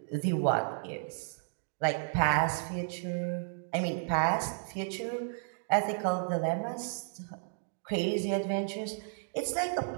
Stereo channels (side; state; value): left; silent; digital silence